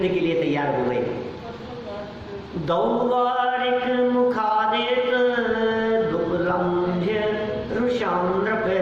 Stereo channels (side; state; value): both; identical; correlation 1.00